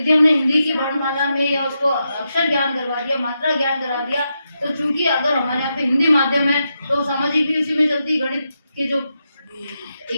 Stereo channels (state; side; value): inverted; both; correlation -0.85